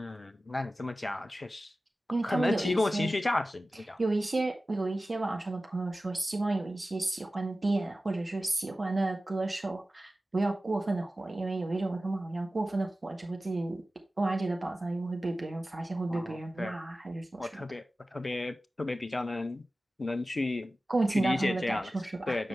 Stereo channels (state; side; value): normal; both; correlation 0.95